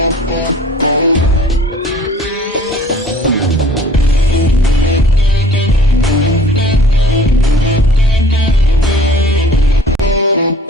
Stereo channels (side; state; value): both; normal; correlation 0.50